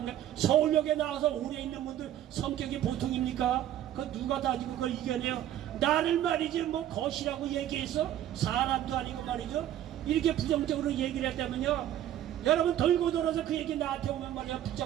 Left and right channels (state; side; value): quieter; left; 11.9 dB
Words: 게 서울역에 나와서 오래 있는 분들 성격이 보통입니까? 그 누가 다 그걸 이겨내요? 나를 말이지 뭐 것이라고 얘기해서 사람도 아니고 말이죠 이렇게 부정적으로 얘기를 했다면요 여러분 돌고 돌아서 그 얘기 나한테 오면 말이야